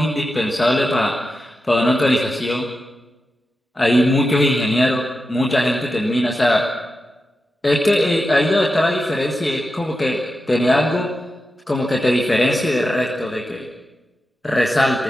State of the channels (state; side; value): normal; both; correlation 0.90